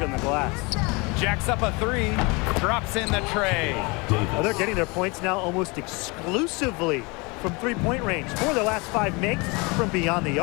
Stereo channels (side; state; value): right; quieter; 27.6 dB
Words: on the glass. Jacks up a 3. Drops in the tray. Well, they're getting their points now almost exclusively from three-point range. 4 of their last 5 makes from beyond the